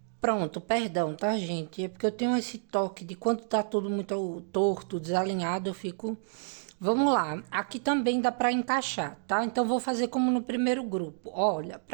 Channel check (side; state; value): left; silent; digital silence